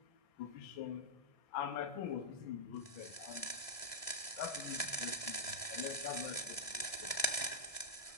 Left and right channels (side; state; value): right; late; 1.7 ms